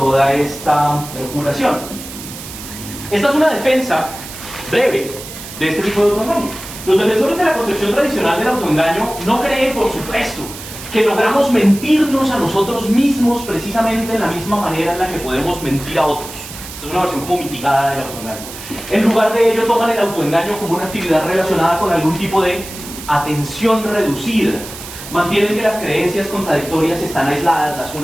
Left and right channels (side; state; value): right; noise; hiss, 12 dB below the sound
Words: curación. Esta es una defensa breve de este tipo de autoengaño. Los defensores de la concepción tradicional del autoengaño no creen, por supuesto, que logramos mentirnos a nosotros mismos precisamente en la misma manera en la que podemos mentir a otros. Esta es una versión como mitigada del autoengaño. En lugar de ello, toman el autoengaño como una actividad relacionada con algún tipo de atención reducida. Mantienen que las creencias contradictorias están aisladas las